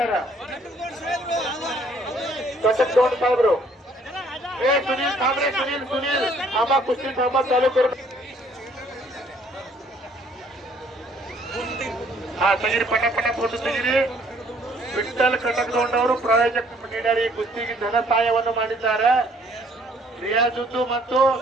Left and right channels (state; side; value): normal; both; correlation 0.61